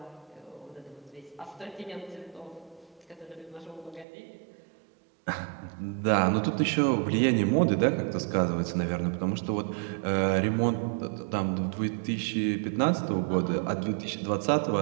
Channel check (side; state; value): left; drops out; at 4.0 s